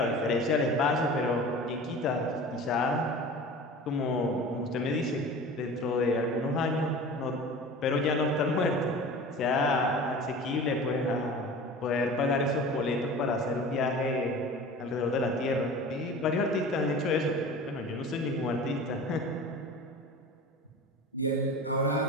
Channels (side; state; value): both; normal; correlation 0.37